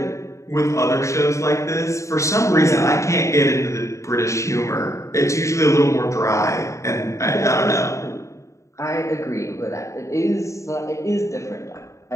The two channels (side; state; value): right; late; 0.15 ms